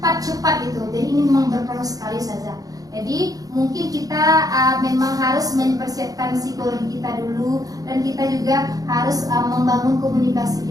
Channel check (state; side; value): late; left; 0.18 ms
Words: cepat gitu. Jadi ini memang berpengaruh sekali ustazah. Jadi mungkin kita memang harus mempersiapkan psikologi kita dulu, dan kita juga harus membangun komunikasi